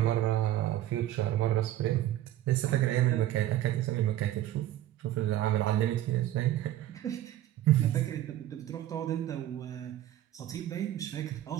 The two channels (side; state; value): left; quieter; 13.2 dB